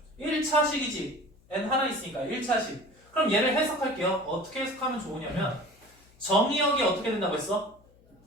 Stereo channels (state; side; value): noise; left; hum, 29 dB below the sound